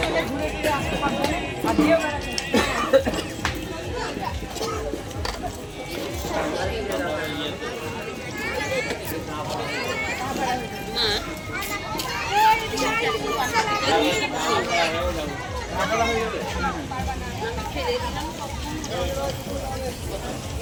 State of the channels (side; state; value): both; identical; correlation 1.00